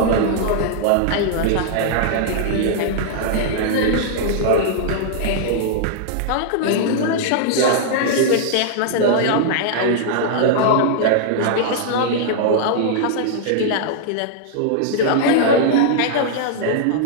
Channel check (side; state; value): both; different; correlation -0.02